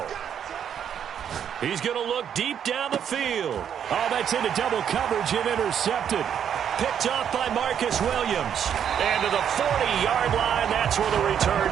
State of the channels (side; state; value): left; quieter; 8.7 dB